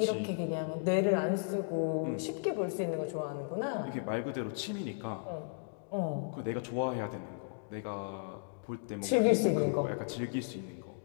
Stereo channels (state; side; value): silent; right; digital silence